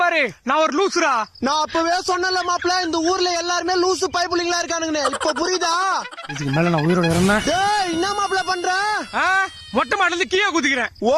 பாரு. நான் ஒரு லூசுரா. நான் அப்பவே சொன்னல மாப்பிள்ள, இந்த ஊர்ல எல்லாருமே லூசு பைப்புலிங்களா இருக்கானுங்க. இப்ப புரியுதா? இதுக்கு மேல நான் உயிரோட இருந்தேன். டேய் என்ன மாப்பிள்ள பண்ற? மொட்டை மாடில இருந்து கீழே குதிக்கிறேன். ஓ,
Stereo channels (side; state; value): both; identical; correlation 1.00